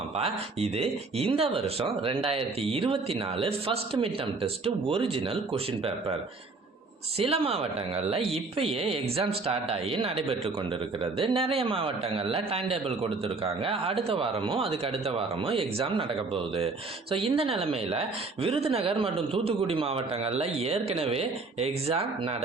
இது இந்த வருஷம் 2024 first mid term test original question paper. சில மாவட்டங்களில் இப்பயே எக்ஸாம் ஸ்டார்ட் ஆகி நடைபெற்று கொண்டிருக்கிறது. நிறைய மாவட்டங்களில் டைம் டேபிள் கொடுத்துருக்காங்க. அடுத்த வாரமும் அதுக்கு அடுத்த வாரமும் எக்ஸாம் நடக்க போகுது. ஸோ இந்த நிலைமையில் விருதுநகர் மற்றும் தூத்துக்குடி மாவட்டங்களில் ஏற்கனவே எக்ஸாம்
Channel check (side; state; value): left; quieter; 3.8 dB